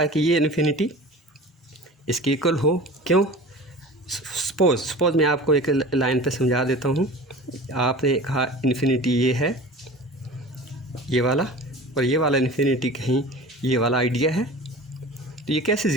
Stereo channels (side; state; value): both; normal; correlation 0.38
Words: कि ये इन्फिनिटी इसके इक्वल हो। क्यों? सपोज़ मैं आपको एक लाइन पे समझा देता हूँ। आपने कहा इन्फिनिटी ये है, ये वाला, और ये वाला इन्फिनिटी कहीं ये वाला आइडिया है, तो ये कैसे